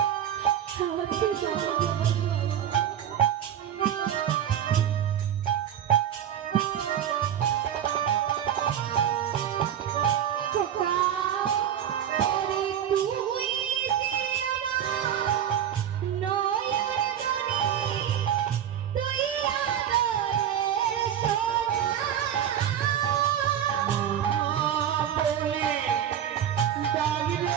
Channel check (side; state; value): left; quieter; 9.8 dB